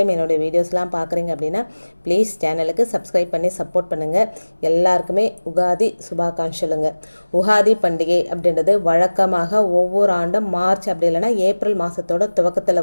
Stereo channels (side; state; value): both; inverted; correlation -1.00